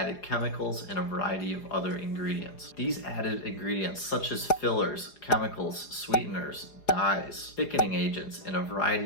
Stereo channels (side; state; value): right; late; 4.9 ms